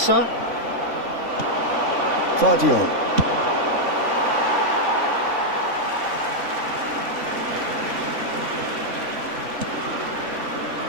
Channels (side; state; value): left; late; 3.5 ms